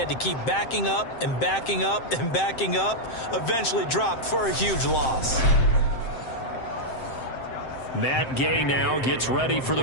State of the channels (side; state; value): right; late; 7.7 ms